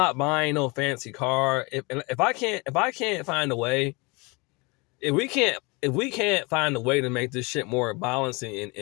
buying no fancy car. If I can't find a way, if we can't find a way to make this shit more balanced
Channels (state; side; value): quieter; right; 27.5 dB